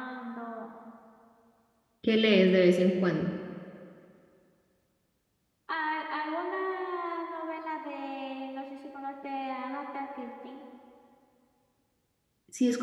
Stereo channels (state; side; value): identical; both; correlation 1.00